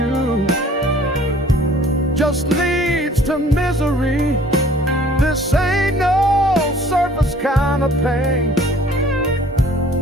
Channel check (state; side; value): normal; both; correlation 0.54